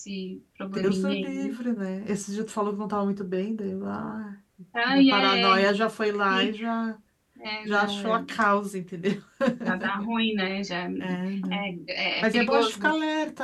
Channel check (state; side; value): identical; both; correlation 1.00